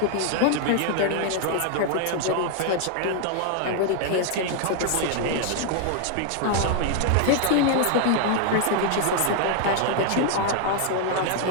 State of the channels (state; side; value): different; both; correlation 0.00